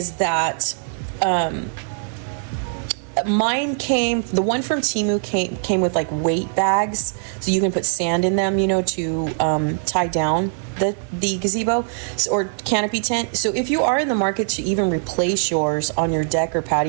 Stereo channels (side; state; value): left; silent; digital silence